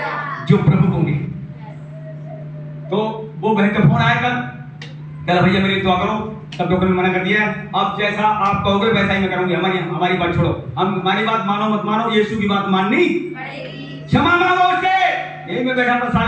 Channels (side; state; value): both; identical; correlation 1.00